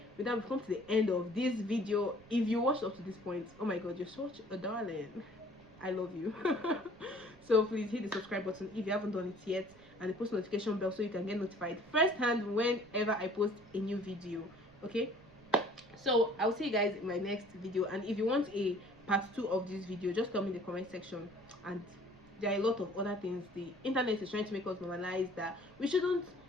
with that, we've come to the end of this video. If you watched up to this point, oh my god, you're such a darling. I love you. So please hit the subscribe button if you haven't done it yet, and the post notification bell so you can get notified first hand whenever I post a new video. Okay, so I'll see you guys in my next video, and if you want a part 2 of this video, just tell me in the comment section. And there are a lot of other things the internet is trying to make us normalize that we shouldn't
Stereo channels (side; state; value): right; noise; rumble, 26 dB below the sound